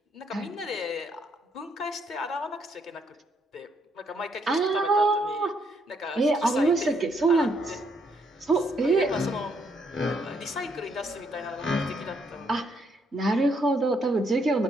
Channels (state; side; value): normal; both; correlation 0.73